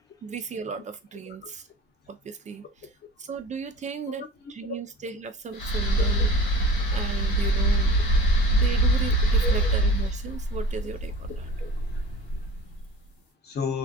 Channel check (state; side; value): normal; both; correlation 0.40